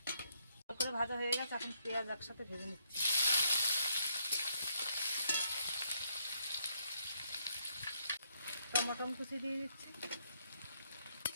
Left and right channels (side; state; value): both; inverted; correlation -0.74